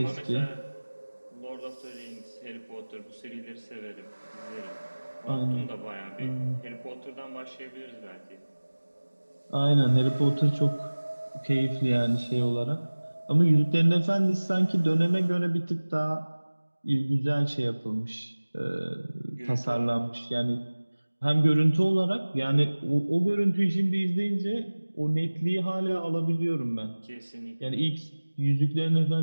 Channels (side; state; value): both; inverted; correlation -1.00